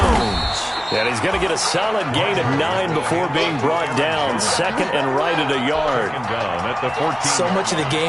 And he's going to get a solid gain of 9 before being brought down. Second and right at a yard. So much of the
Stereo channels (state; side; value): identical; both; correlation 1.00